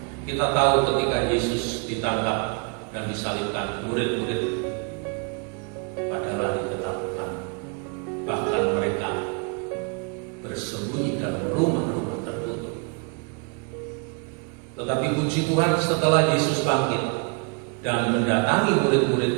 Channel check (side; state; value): left; quieter; 35.7 dB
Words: kita tahu ketika Yesus ditangkap dan disalibkan, murid-murid pada lari ketakutan. Bahkan mereka bersembunyi dalam rumah-rumah tertutup. Tetapi puji Tuhan, setelah Yesus bangkit dan mendatangi murid-murid